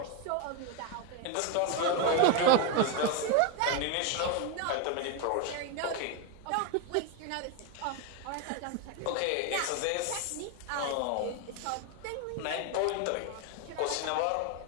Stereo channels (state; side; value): different; both; correlation 0.01